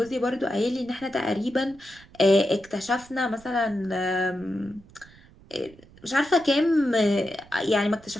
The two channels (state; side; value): noise; right; rumble, 24 dB below the sound